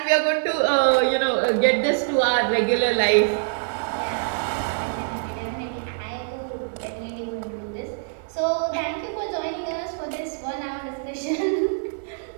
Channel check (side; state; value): left; silent; digital silence